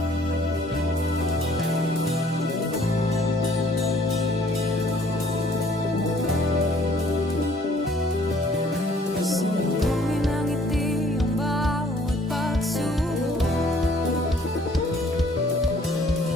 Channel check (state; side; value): normal; both; correlation 0.59